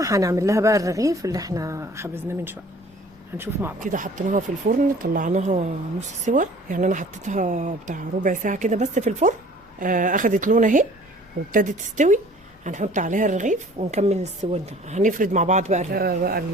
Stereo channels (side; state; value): both; normal; correlation 0.50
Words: هنعمل لها بقى الرغيف اللي احنا خبزناه من شوية. هنشوف مع بعض. كده حطيناها في الفرن، طلعناها نص سوا، يعني انا حطيتها بتاع ربع ساعة كده بس في الفرن. اخدت لون اهي وابتدت تستوي. هنحط عليها الرغيف ونكمل السوا ده. هنفرد مع بعض بقى